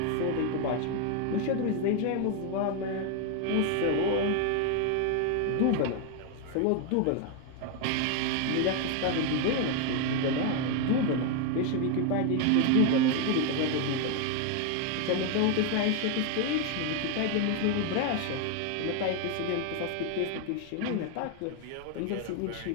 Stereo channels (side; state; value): both; different; correlation 0.01